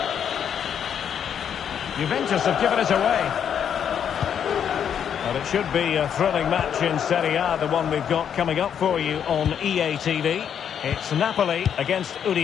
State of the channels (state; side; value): quieter; right; 8.4 dB